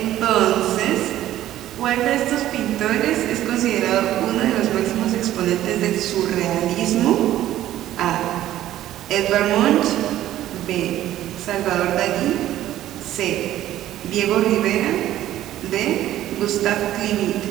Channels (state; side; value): quieter; left; 13.3 dB